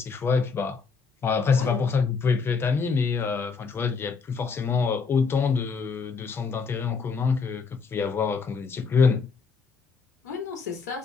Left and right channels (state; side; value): quieter; right; 5.1 dB